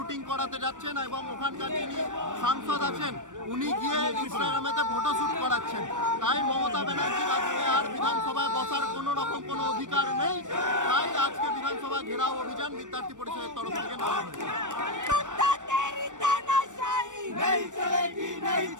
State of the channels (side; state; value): left; late; 0.86 ms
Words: করাতে যাচ্ছেন এবং ওখানকার যিনি সাংসদ আছেন উনি গিয়ে ইনস্টাগ্রামেতে ফটোশ্যুট করাচ্ছেন। তাই মমতা ব্যানার্জির আজকে আর বিধানসভায় বসার কোনো রকম কোনো অধিকার নেই। তাই আজকে বিধানসভা ঘেরাও অভিযান বিদ্যার্থী পরিষদের তরফ থেকে নেওয়া হয়েছে। नहीं चलेगी नहीं